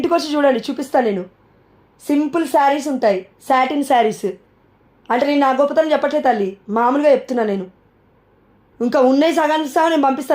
వచ్చి చూడండి, చూపిస్తాను నేను. సింపుల్ శారీస్ ఉంటాయి, సాటిన్ శారీస్. అంటే నేను నా గొప్పతనం చెప్పట్లేదు తల్లి, మామూలుగా చెప్తున్నాను నేను. ఇంకా ఉన్నాయి సగానికి సగం నేను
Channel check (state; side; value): identical; both; correlation 1.00